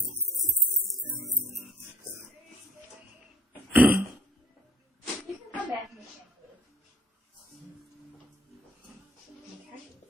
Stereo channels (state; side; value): normal; both; correlation 0.59